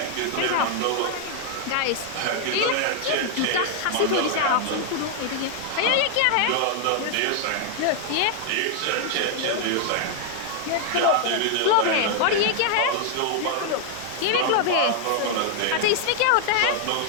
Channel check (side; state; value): both; different; correlation 0.00